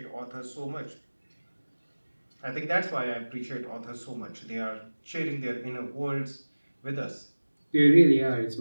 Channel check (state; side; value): inverted; both; correlation -1.00